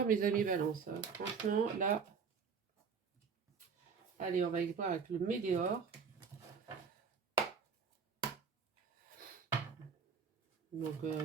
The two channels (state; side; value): quieter; left; 5.9 dB